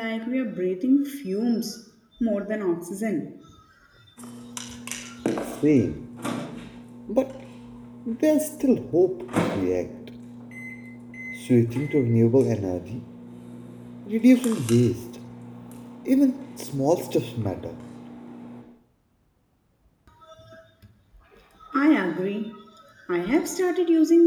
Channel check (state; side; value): identical; both; correlation 1.00